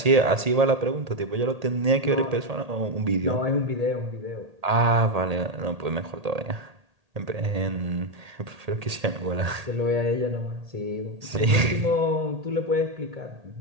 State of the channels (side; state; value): left; late; 1.8 ms